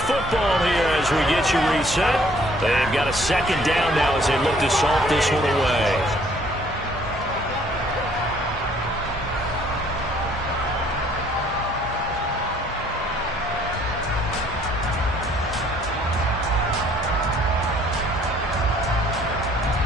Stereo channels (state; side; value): normal; both; correlation 0.61